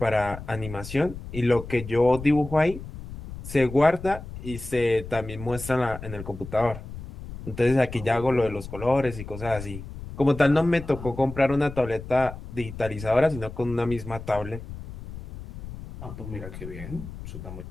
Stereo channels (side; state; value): left; noise; rumble, 12 dB below the sound